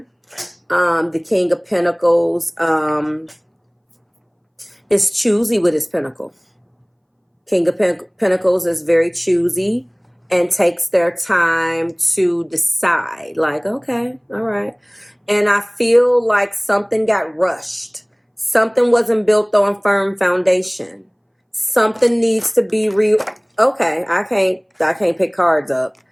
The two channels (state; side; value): identical; both; correlation 1.00